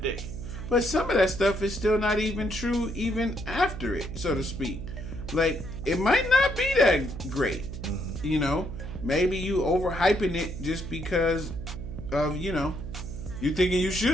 dick. But some of that stuff is still not even true even after it, so to speak. Like, it might not be that great, you know? Maybe you overhyping it just because of, you know, you thinking you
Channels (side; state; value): right; noise; hum, 8 dB below the sound